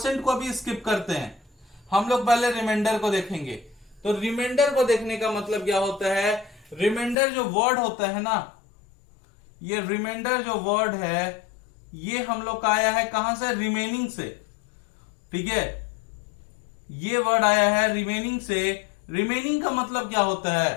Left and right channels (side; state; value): right; drops out; at 7.2 s